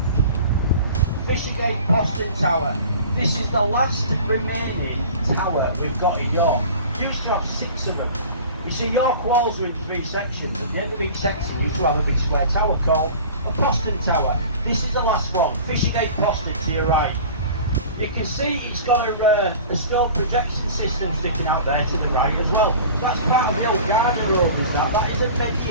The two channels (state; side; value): inverted; both; correlation -0.40